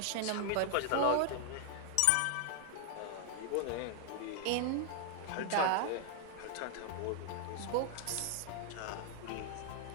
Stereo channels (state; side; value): different; both; correlation 0.00